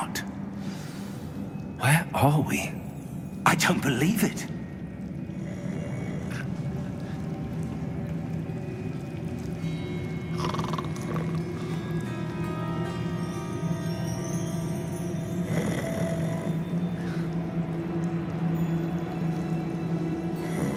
Where are we? I don't believe it.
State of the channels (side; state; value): both; identical; correlation 1.00